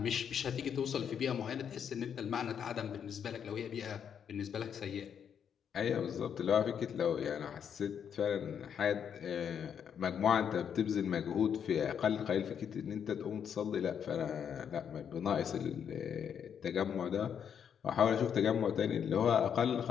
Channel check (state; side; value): quieter; right; 8.0 dB